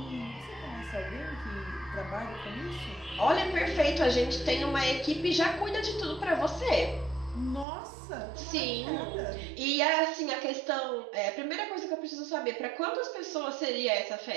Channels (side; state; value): left; drops out; at 7.7 s